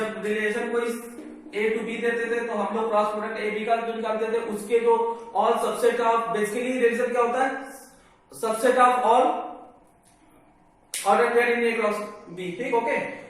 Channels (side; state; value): both; identical; correlation 1.00